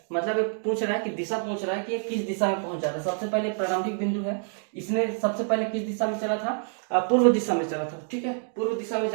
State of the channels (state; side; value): silent; left; 60 dB below the other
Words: मतलब ये पूछ रहा है कि दिशा पूछ रहा है कि ये किस दिशा में पहुंच जाता है। सबसे पहले प्रारंभिक बिंदु है, इसने सबसे पहले किस दिशा में चला था, पूर्व दिशा में चला था। ठीक है, पूर्व दिशा में